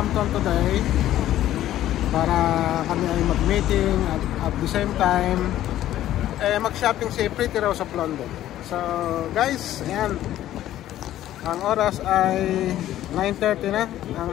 today para kami ay mag-meeting at the same time mag-shopping si Pretty Rose of London. So guys, ayan, ang oras ay 9:30 na.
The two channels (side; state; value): right; quieter; 13.1 dB